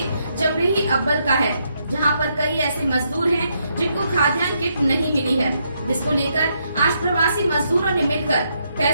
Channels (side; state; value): both; inverted; correlation -0.77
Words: जमरेही अब्बल का है, जहां पर कई ऐसे मजदूर हैं जिनको खाद्यान्न किट नहीं मिली है, जिसको लेकर आज प्रवासी मजदूरों ने मिलकर